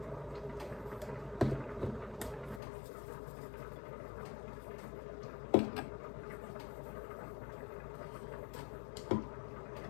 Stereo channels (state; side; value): drops out; right; at 2.6 s